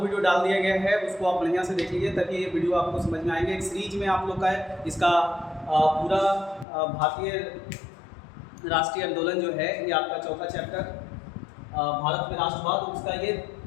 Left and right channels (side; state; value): right; drops out; at 6.7 s